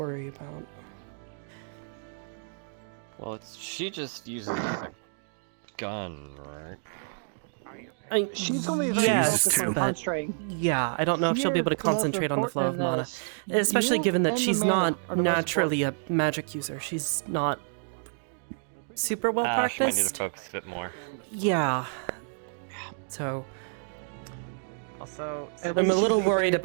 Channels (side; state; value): left; silent; digital silence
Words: about. Well, she just uses a gun, right? She's only yes, on but concentrating. yeah, I don't know if she'll be able to concentrate on the flow of mana, especially given that she's not naturally a magic user. She's not super well She might need practiced. to focus a bit more. Yeah. So Also, I'm a little worried